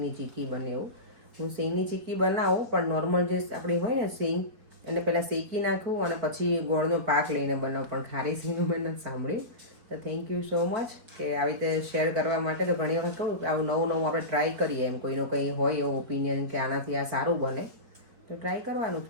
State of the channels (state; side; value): late; left; 4.9 ms